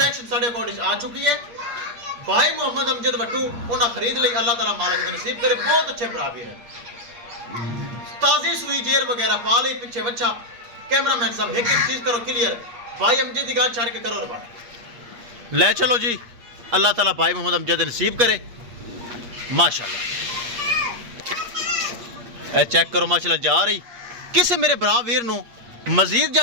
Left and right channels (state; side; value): late; left; 8.5 ms